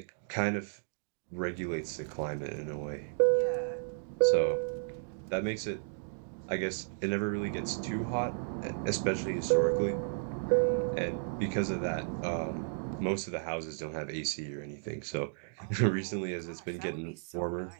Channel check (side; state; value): left; silent; digital silence